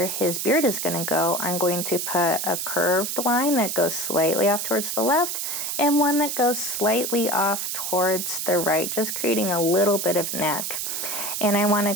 his beard is going to go, I'm going to put a curved line that goes slightly off towards the left and one that goes slightly off towards the right, just creating a little bit of neck. And I want to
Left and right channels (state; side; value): noise; right; hiss, 3 dB below the sound